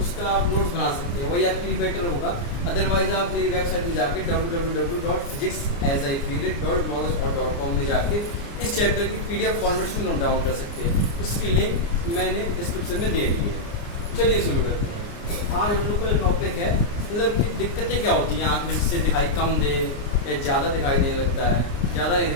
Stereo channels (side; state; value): right; late; 29 ms